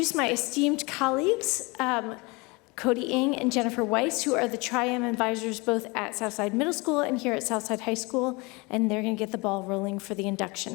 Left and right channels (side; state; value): right; quieter; 26.4 dB